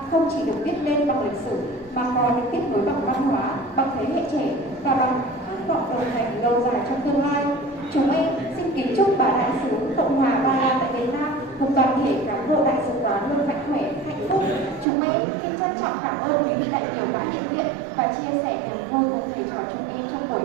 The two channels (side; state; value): left; drops out; at 14.9 s